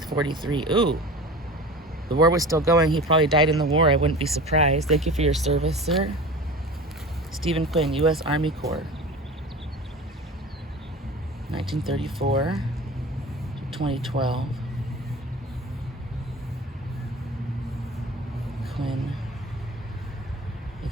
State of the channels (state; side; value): normal; both; correlation 0.36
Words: 43. Ooh. The war was still going. He probably died in the war. I wouldn't be surprised. Thank you for your service, sir. Stephen Quinn, U.S. Army Corps. 1934 to 2012. Quinn. I